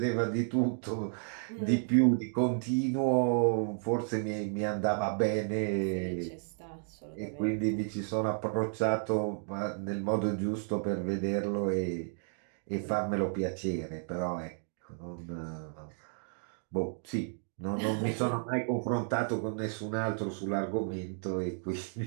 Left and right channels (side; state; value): left; silent; 56 dB below the other